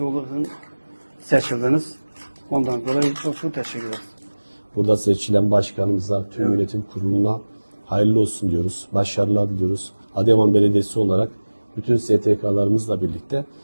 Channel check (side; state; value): both; inverted; correlation -1.00